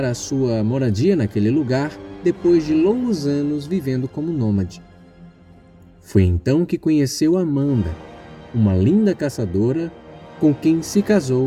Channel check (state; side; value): identical; both; correlation 1.00